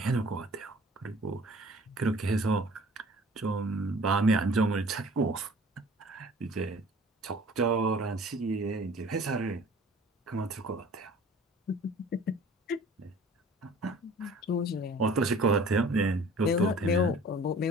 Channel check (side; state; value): both; normal; correlation 0.48